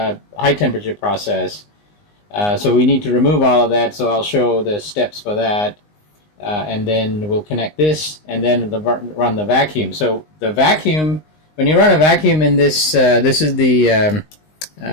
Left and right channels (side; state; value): right; late; 19 ms